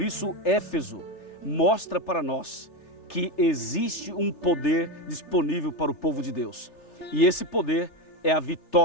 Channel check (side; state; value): right; late; 3.3 ms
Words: isso, Éfeso mostra para nós que existe um poder disponível para o povo de Deus. E esse poder é a